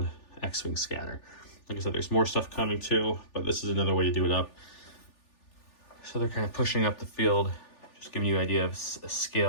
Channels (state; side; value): late; right; 3.4 ms